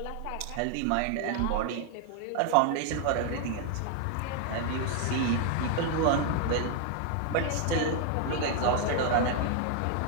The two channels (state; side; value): different; both; correlation 0.00